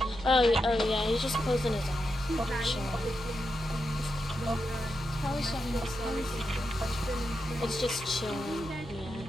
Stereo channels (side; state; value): right; noise; hum, 15 dB below the sound